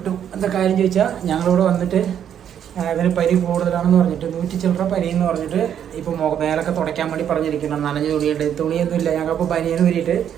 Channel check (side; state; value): left; quieter; 9.3 dB